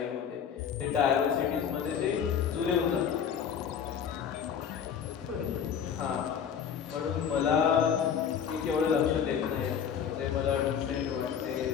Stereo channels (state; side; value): quieter; right; 7.9 dB